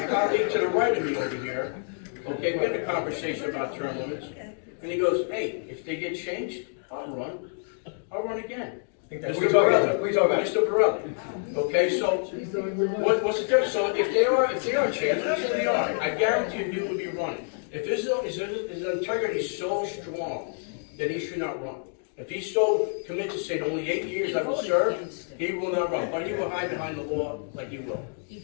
colleague to the right of me over here, okay, we had a conversation about term limits, and he goes, hey, if they get changed, I'll run again. We talk about Mr. Borelli. Okay, so what's the difference? So if they are changed, let's say they are, I guarantee you will be running. If his integrity is so strong, then he should not run. If he's so committed to say only 8 years I will serve, he will not run. But he will hide behind the law like he will.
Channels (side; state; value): right; silent; 58 dB below the other